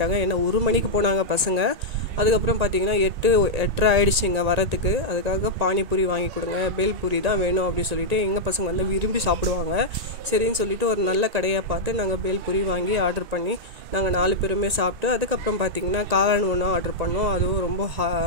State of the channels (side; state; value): left; late; 1.9 ms